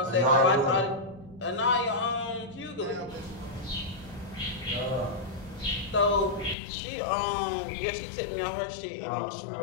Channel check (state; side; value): drops out; right; at 6.6 s